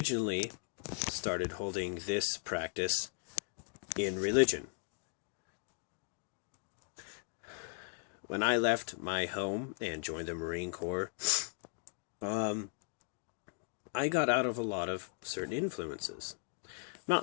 started holding this practice in religion. When I left my home and joined the Marine Corps, I got out of a lot of certain influences. I'm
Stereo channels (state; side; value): silent; right; 53 dB below the other